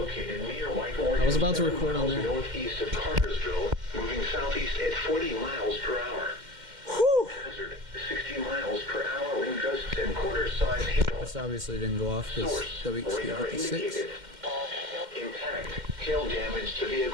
near White Oregon. I was about to record on there. Northeast of Cartersville, moving southeast at 40 miles per hour. Whew. Hazard 60 miles per hour wind gusts and quarter-size hail. This obviously didn't go off because WXJ53. Impact. Hail damage to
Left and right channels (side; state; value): left; late; 2.1 ms